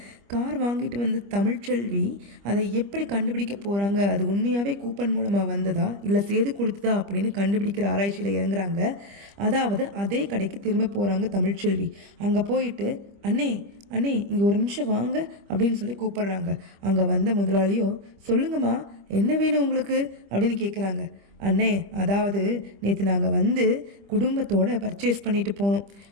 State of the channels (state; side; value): late; left; 25 ms